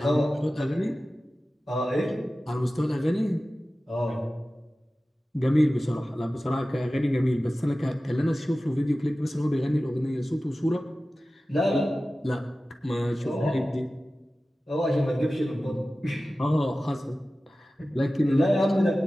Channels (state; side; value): normal; both; correlation 0.96